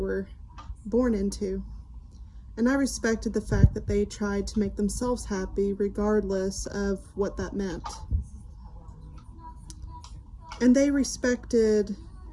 born into. And I respected the fact that they tried to make themselves happy regardless of what that meant. And they respected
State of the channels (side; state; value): both; identical; correlation 1.00